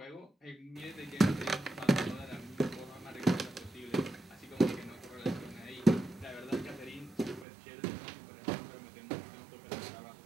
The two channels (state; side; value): drops out; left; at 7.5 s